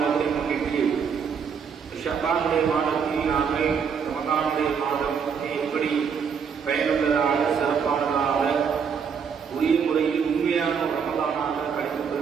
முன்னிட்டு ஷஅபானுடைய மாதத்தில் நாங்கள் ரமலானுடைய மாதம் எப்படி பயனுள்ளதாக சிறப்பானதாக உரிய முறையில் உண்மையான ரமலானாக கழித்து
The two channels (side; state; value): left; quieter; 6.6 dB